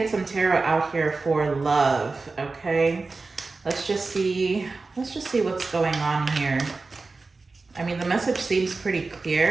some tarot out here for love, okay? Let's just see what's going on here. I mean, the message seems pretty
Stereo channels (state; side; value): quieter; left; 3.8 dB